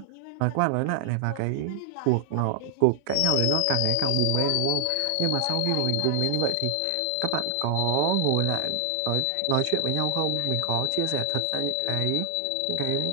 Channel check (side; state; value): both; different; correlation 0.00